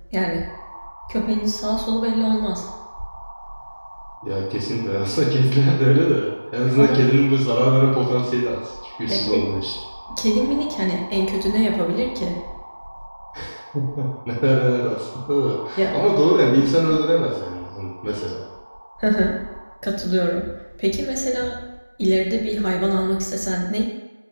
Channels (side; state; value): both; inverted; correlation -1.00